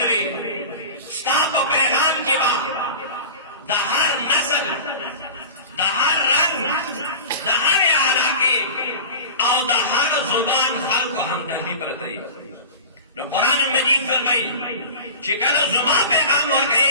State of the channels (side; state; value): both; inverted; correlation -0.34